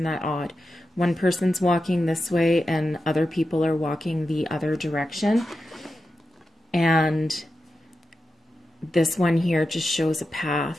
that odd? One person's walking this way and other people are walking the other direction. And this one here just shows a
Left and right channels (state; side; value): normal; both; correlation 0.90